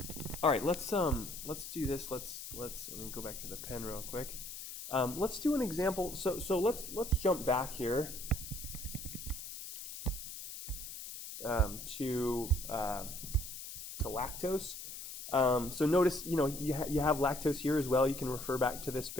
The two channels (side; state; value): left; noise; hiss, 9 dB below the sound